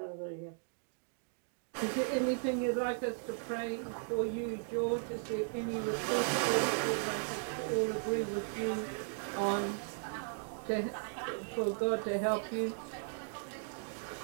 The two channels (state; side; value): silent; left; digital silence